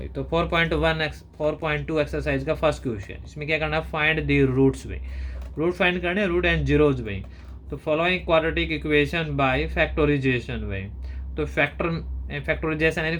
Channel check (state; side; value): identical; both; correlation 1.00